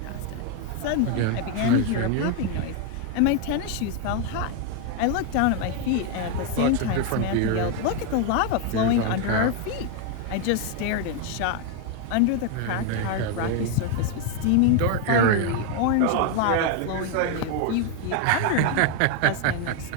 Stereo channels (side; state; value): both; different; correlation 0.01